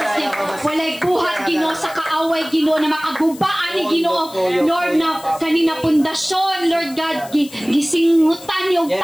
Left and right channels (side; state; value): left; noise; hiss, 19 dB below the sound